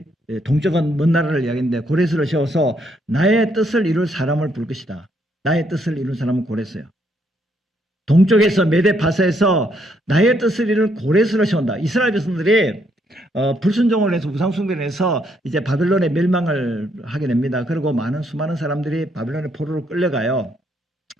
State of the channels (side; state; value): both; normal; correlation 0.73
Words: 동쪽은 먼 나라를 이야기하는데 고레스를 세워서 나의 뜻을 이룰 사람을 부를 것이다. 나의 뜻을 이룰 사람은 고레스예요. 동쪽에서 메데파사에서 나의 뜻을 이룰 고레스로 세운다. 이스라엘 백성들이 불순종을 해서 우상숭배를 해서 이제 바벨론의 멸망을 하게 됩니다. 그리고 수많은 사람들이 바벨론의 포로로 끌려가요.